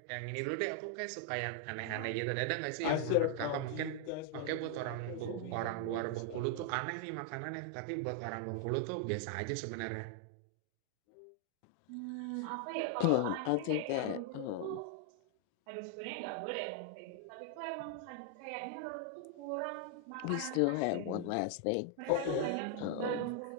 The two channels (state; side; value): different; both; correlation 0.00